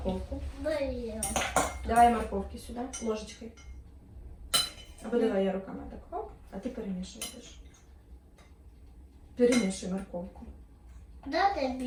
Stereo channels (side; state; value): both; identical; correlation 1.00